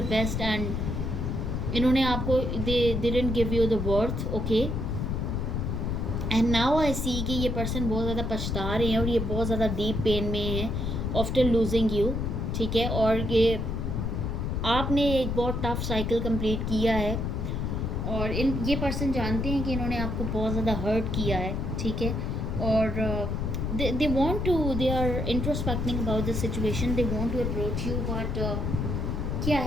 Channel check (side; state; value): left; noise; rumble, 1 dB below the sound